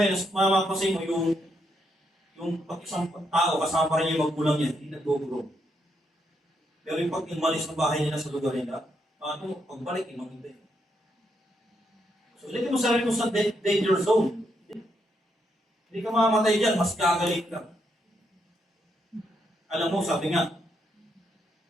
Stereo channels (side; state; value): both; normal; correlation 0.78